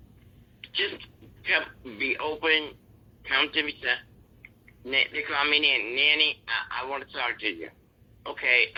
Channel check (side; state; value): both; identical; correlation 1.00